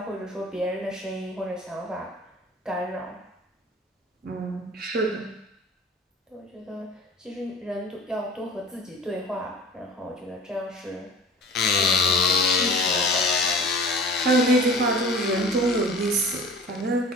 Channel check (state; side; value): normal; both; correlation 0.41